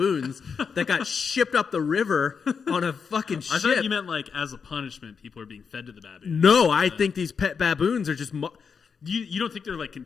that got shipped up the river on a fucking ship. I thought you meant like as a punishment, people are being fed to the baboons. No, I think these pet baboons are just. You don't think they're like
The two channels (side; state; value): right; quieter; 6.0 dB